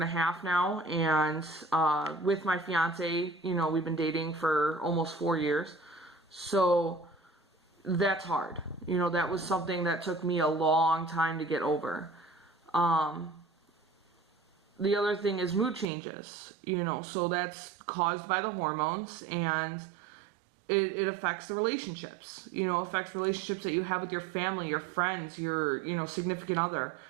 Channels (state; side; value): drops out; left; at 15.9 s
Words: now, and with my fiance, you know, we've been dating for almost 4 years. So that's hard. You know, that was something that took me a long time to get over. The other thing is mood changes, you know, so that's caused by the hormones, and it affects the relationships, you know, affects relationships that you have with your family, your friends, your, you know, significant other.